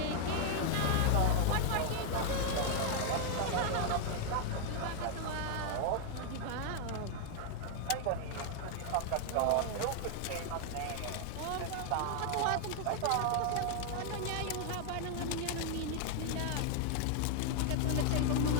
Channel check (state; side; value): different; both; correlation 0.00